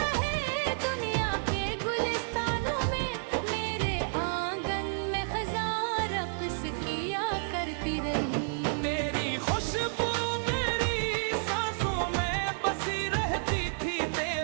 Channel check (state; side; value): silent; left; digital silence